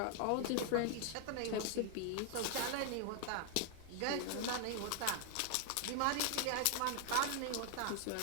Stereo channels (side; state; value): both; different; correlation 0.00